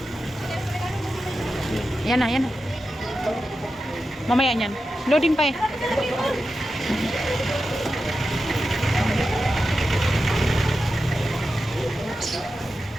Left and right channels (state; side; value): normal; both; correlation 0.91